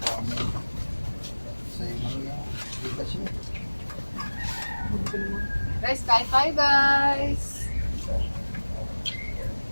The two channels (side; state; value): both; inverted; correlation -1.00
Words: Guys, kain tayo guys.